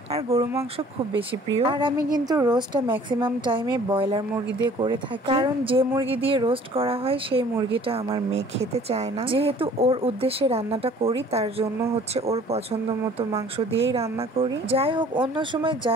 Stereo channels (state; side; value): normal; both; correlation 0.52